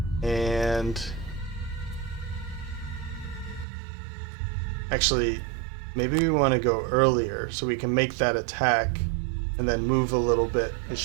And... Actually, maybe we want to go earlier so we can make that attack and then move a little bit, and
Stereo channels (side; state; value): left; drops out; at 3.7 s